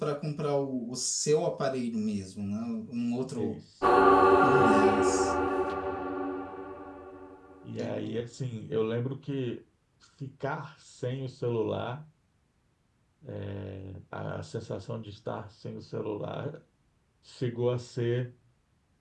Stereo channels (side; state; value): both; identical; correlation 1.00